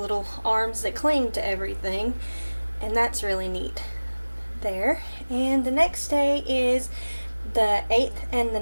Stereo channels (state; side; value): inverted; both; correlation -1.00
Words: arms that cling to everything, and that's really neat there. And the next day is the 8th and the